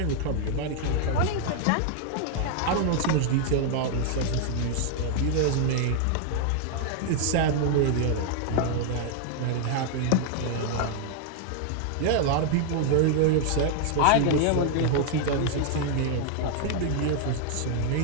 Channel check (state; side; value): different; both; correlation 0.00